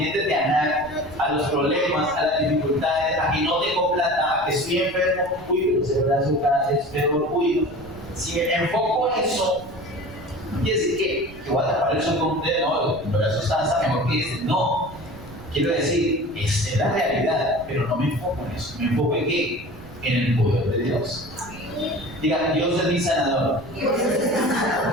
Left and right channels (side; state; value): right; noise; rumble, 18 dB below the sound